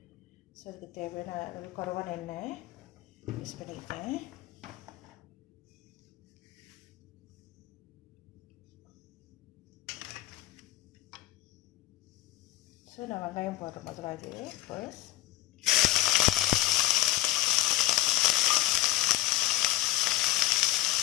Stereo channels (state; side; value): quieter; right; 16.5 dB